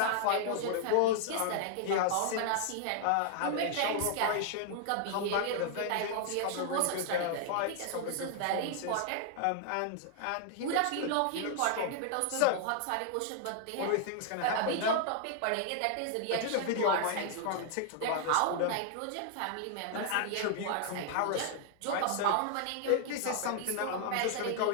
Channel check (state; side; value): different; both; correlation 0.00